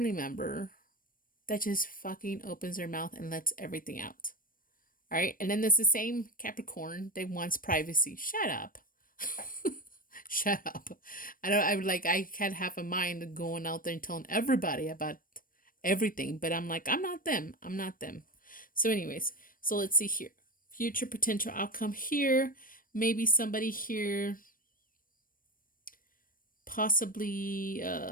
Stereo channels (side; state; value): right; late; 0.41 ms